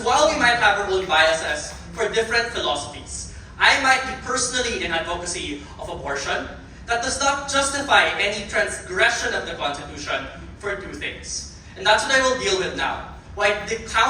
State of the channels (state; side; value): identical; both; correlation 1.00